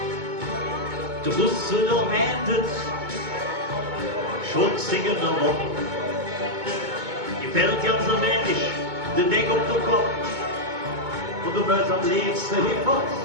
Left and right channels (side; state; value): left; late; 2.2 ms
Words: Du wusstest doch, hättest schon singen noch. Gefällt ganz allmählich, der Denk auf den Kopf. Und du wirst am liebsten hier fort.